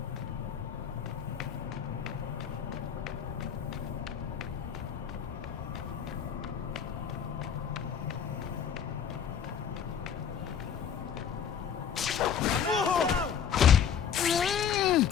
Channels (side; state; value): right; quieter; 7.9 dB